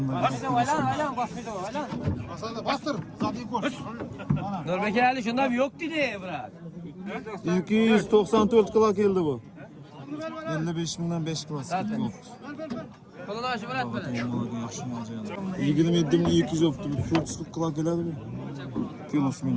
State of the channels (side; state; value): both; identical; correlation 1.00